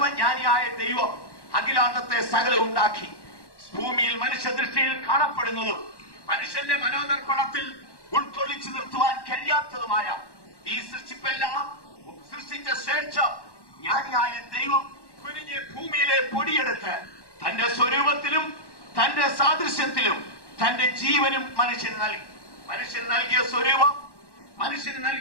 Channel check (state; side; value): late; right; 1.1 ms